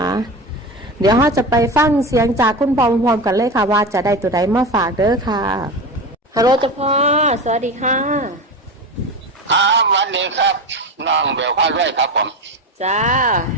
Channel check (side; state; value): both; normal; correlation 0.24